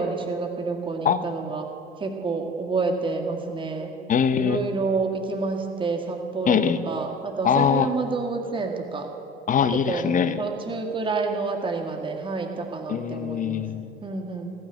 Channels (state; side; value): normal; both; correlation 0.40